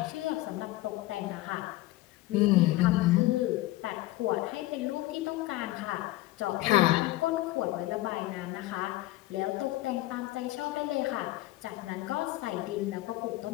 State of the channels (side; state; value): right; quieter; 17.7 dB